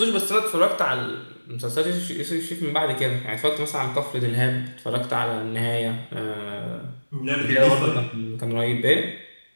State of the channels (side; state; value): both; inverted; correlation -1.00